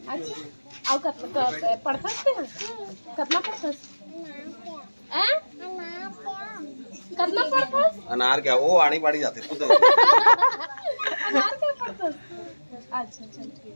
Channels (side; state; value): both; inverted; correlation -1.00